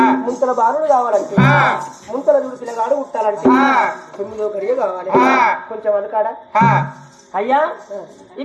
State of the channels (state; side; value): identical; both; correlation 1.00